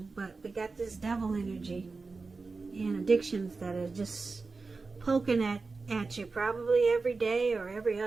but we got this devil energy and addictions that are just poking at you probably every day or every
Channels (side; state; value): left; quieter; 4.1 dB